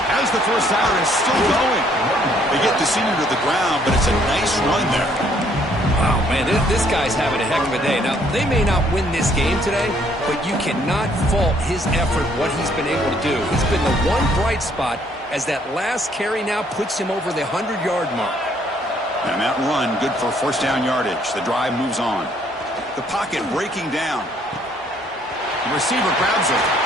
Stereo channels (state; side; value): normal; both; correlation 0.65